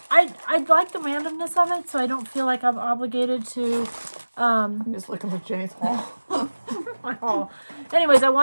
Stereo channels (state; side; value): inverted; both; correlation -1.00